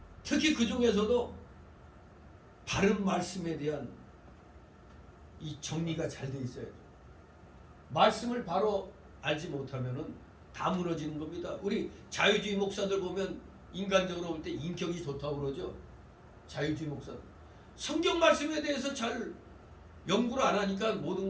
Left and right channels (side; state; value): both; identical; correlation 1.00